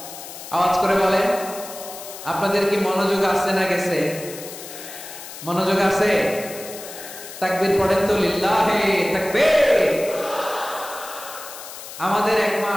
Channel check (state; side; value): noise; left; hiss, 13 dB below the sound